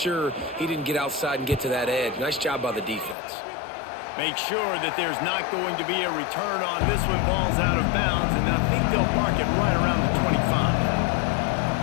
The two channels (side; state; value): right; drops out; at 3.2 s